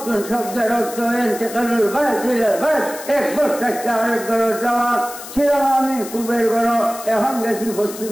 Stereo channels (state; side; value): noise; left; hiss, 13 dB below the sound